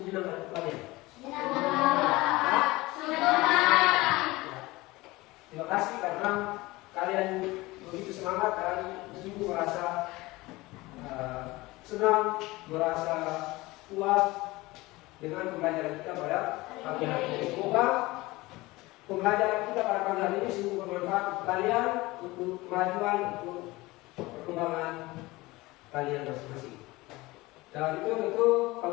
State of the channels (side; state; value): right; quieter; 20.7 dB